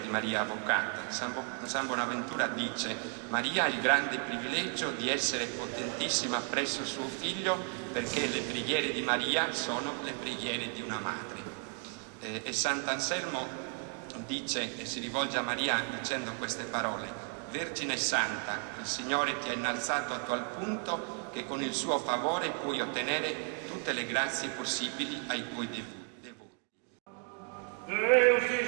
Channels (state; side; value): quieter; left; 39.3 dB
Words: Maria Avvocata. San Bonaventura dice: Maria ha il grande privilegio di essere potentissima presso suo figlio, perché le preghiere di Maria sono le preghiere di una madre. E Sant'Anselmo dice e si rivolge a Maria dicendo queste parole: Vergine Santa, il Signore ti ha innalzato a tal punto che con il suo favore puoi ottenere tutte le grazie possibili ai tuoi devoti. Deus ti